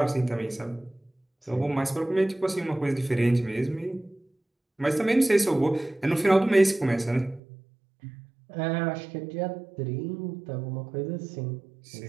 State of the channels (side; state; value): left; drops out; at 7.4 s